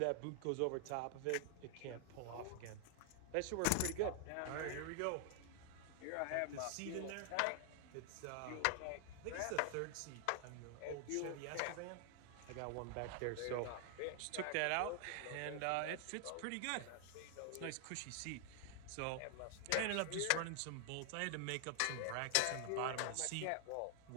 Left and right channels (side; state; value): both; different; correlation 0.00